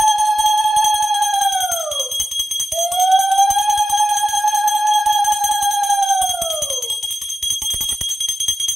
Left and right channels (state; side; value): normal; both; correlation 0.93